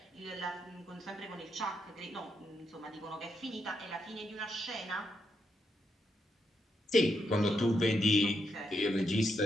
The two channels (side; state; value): both; normal; correlation 0.81